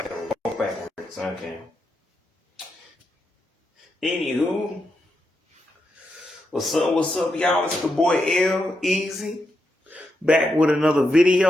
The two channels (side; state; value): both; normal; correlation 0.85